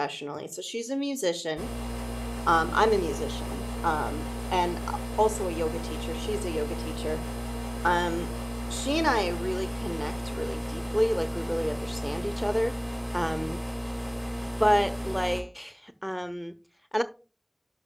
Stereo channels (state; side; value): identical; both; correlation 1.00